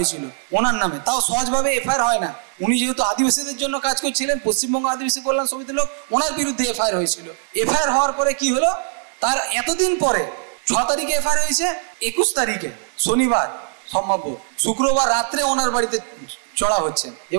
ওনার নামে। তাও সহজভাবে এফআইআর হয় না, উনি যেহেতু আদিবাসীদের জন্য কাজ করছিলেন, পশ্চিমবঙ্গ আদিবাসী কল্যাণ সমিতির লোক, ওনার বিরুদ্ধে এফআইআর হয়েছিল। এফআইআর হওয়ার পরে কি হলো, তার এতদিন পরে 6 তারিখে এফআইআর হয়েছে, 21 তারিখে শনিবার সম্ভাব্য শুক্রবার রাত্রে ওনার বাড়িতে চড়া হচ্ছে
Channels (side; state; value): left; silent; digital silence